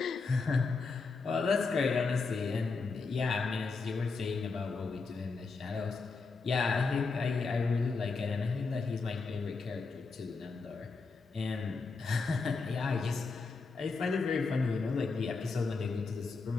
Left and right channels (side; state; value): right; quieter; 4.4 dB